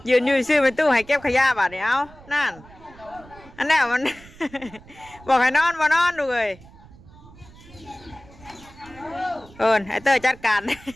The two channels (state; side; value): noise; right; rumble, 22 dB below the sound